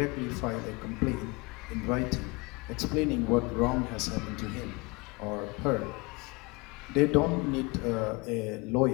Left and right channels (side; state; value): right; quieter; 27.4 dB